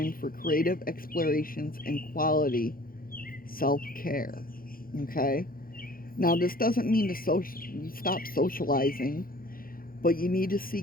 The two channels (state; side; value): late; right; 0.42 ms